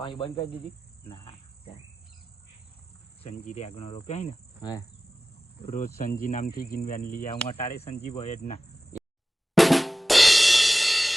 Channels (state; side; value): normal; both; correlation 0.95